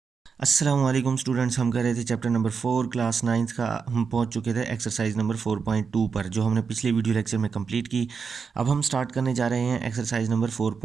अस्सलाम वालेकुम स्टूडेंट्स। हम कर रहे थे चैप्टर नंबर 4 क्लास 9th का। हम पहुंच चुके थे एक्सरसाइज नंबर 4.2 पर, जो हमने पिछले वीडियो लेक्चर में कंप्लीट की। अब हम स्टार्ट करने जा रहे हैं एक्सरसाइज नंबर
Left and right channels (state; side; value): quieter; left; 5.7 dB